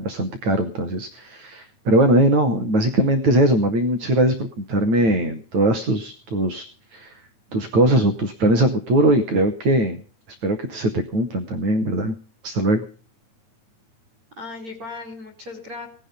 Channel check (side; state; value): left; late; 9.1 ms